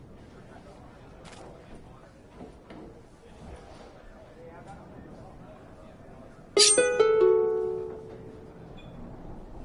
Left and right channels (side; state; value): both; identical; correlation 1.00